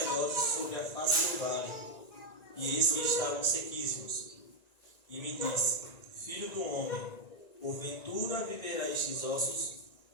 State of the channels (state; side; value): late; right; 1.9 ms